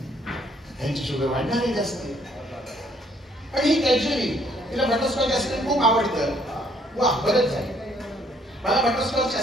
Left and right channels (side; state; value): both; normal; correlation 0.65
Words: त्यांची शुगर वाढणार आहे जास्त. आणि ही कॅज्युअली तिला बटरस्कॉच आईस्क्रीम खूप आवडतं. वा, बरंच झालं. मला बटरस्कॉच